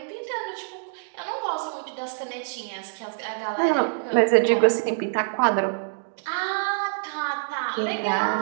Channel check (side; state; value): left; silent; digital silence